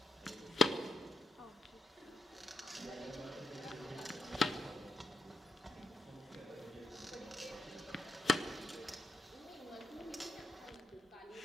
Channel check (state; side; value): normal; both; correlation 0.82